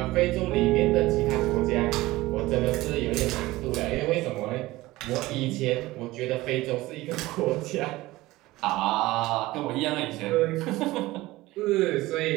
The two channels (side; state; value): left; quieter; 18.6 dB